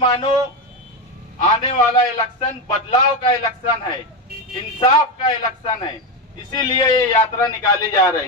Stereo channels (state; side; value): normal; both; correlation 0.12